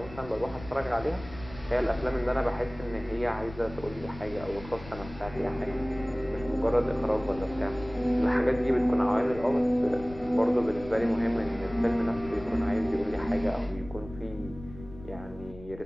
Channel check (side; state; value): left; noise; rumble, 16 dB below the sound